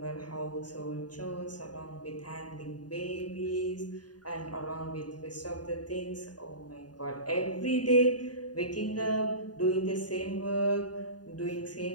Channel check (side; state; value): right; late; 0.69 ms